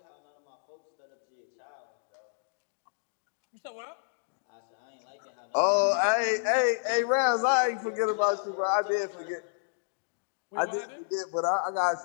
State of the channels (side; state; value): right; silent; digital silence